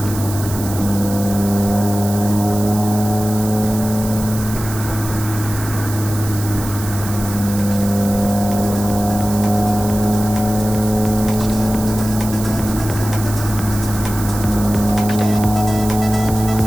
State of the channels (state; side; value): noise; right; hiss, 11 dB below the sound